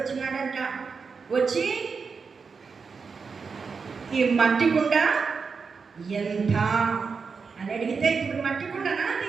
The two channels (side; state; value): left; quieter; 5.2 dB